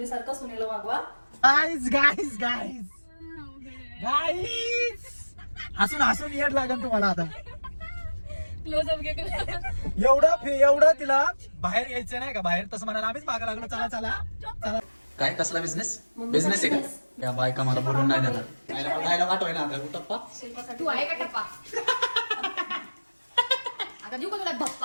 सुनेला वागवा. गाईज गाईज गाईज गाईज हसून हसून येड लागेल तुम्हाला आता. क्लोजअप घे. एवढं तिला बाहेर यायचं नाही का, बाहेर तसं म्हणाला आम्हीच मागा लागलो, चला चला चला. काय कसला बिझनेस बिझनेस आहे का? या बायका मला बोलून नाही देणार. खायला वाटोय ना आता टप्पा. तू आहे का टप्पा? आता देऊ का तुला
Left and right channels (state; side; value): inverted; both; correlation -1.00